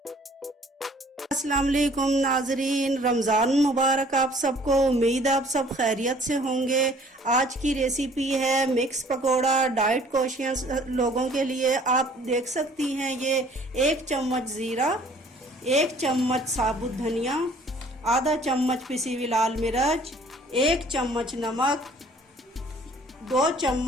वालेकुम नाजरीन, रमज़ान मुबारक आप सबको। उम्मीद आप सब खैरियत से होंगे। आज की रेसिपी है मिक्स पकोड़ा, डाइट कॉन्शियस लोगों के लिए। आप देख सकती हैं ये 1 चम्मच ज़ीरा, 1 चम्मच साबुत धनिया, आधा चम्मच पिसी हुई लाल मिर्च, 1 चम्मच नमक, 2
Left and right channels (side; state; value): both; normal; correlation 0.55